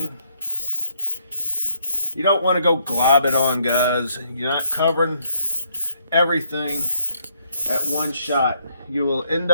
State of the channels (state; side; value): inverted; both; correlation -0.71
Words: You don't want to go glob it on, guys. You're not covering everything at one shot. You will end